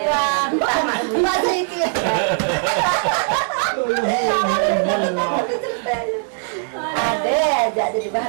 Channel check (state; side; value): silent; left; 55 dB below the other